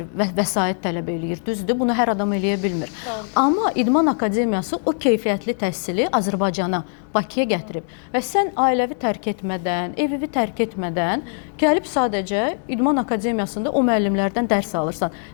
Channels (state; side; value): silent; right; 55 dB below the other